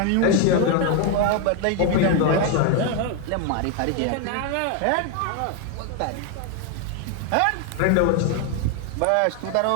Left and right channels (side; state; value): both; different; correlation 0.01